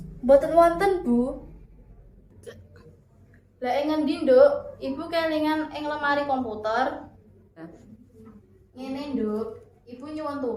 Mboten wonten Bu. Lah ing ngendi, Nduk? Ibu kelingan ing lemari komputer. Ngene, Nduk. Ibu nyuwun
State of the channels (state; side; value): identical; both; correlation 1.00